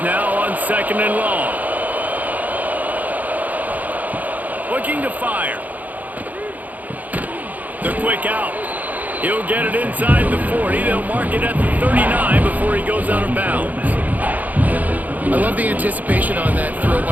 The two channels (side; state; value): left; late; 0.080 ms